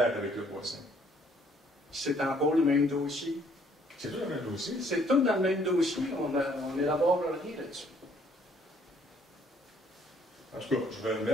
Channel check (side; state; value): both; normal; correlation 0.63